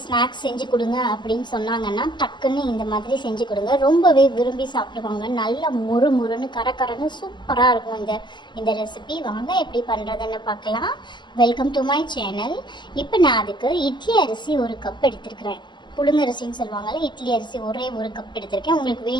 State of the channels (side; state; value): right; late; 0.22 ms